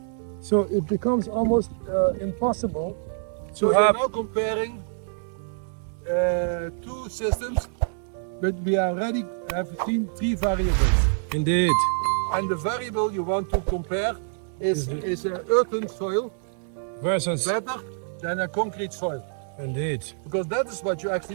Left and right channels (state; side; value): silent; left; 61 dB below the other